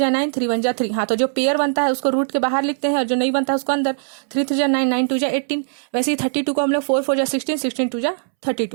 9, 3 1 जा 3। हाँ, तो जो पेयर बनता है उसको रूट के बाहर लिखते हैं और जो नहीं बनता है उसको अंदर। 3 3 जा 9, 9 2 जा 18। वैसे ही 32 को हम लोग 4 4 जा 16, 16 2 जा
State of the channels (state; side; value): silent; left; 66 dB below the other